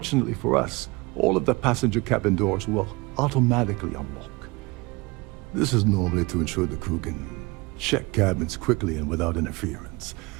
for us, all of the passenger cabin doors will automatically unlock. This is normally to ensure the crew can check cabins quickly and without interference.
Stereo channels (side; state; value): left; quieter; 24.7 dB